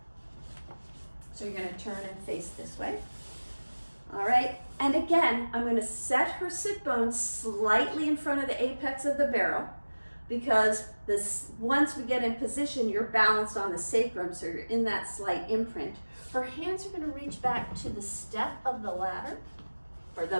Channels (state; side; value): inverted; both; correlation -1.00